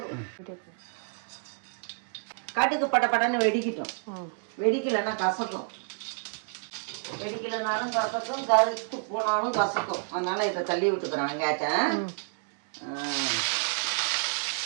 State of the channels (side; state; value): left; silent; 58 dB below the other